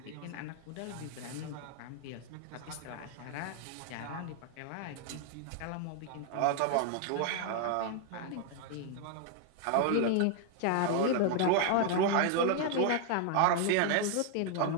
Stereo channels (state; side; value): different; both; correlation 0.00